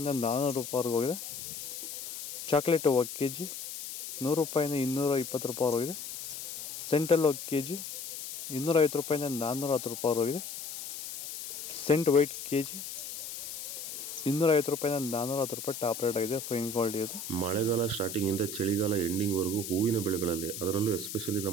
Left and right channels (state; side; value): noise; left; hiss, 8 dB below the sound